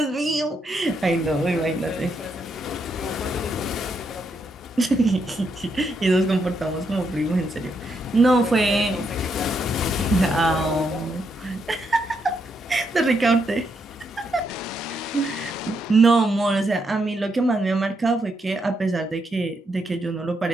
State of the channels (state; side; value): normal; both; correlation 0.79